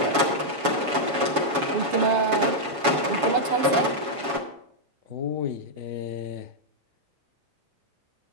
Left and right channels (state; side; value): late; left; 7.1 ms